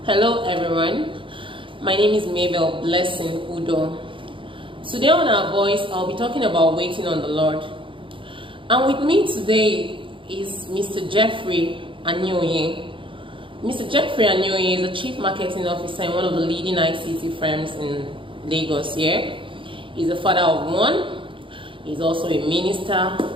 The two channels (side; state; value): left; late; 0.25 ms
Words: Hello everyone, my name is Mabel Blessing Udo. Today on Our Voice, I'll be talking about waiting on the Lord. And with me today is Mr. Jeffrey Anyoye. Mr. Jeffrey Anyoye is a Chief Marketing Officer in one of the leading ICT firms in Lagos here. He's a father of one. He's also a minister.